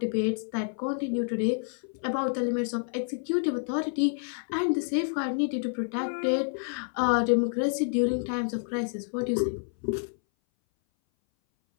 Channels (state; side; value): silent; right; 59 dB below the other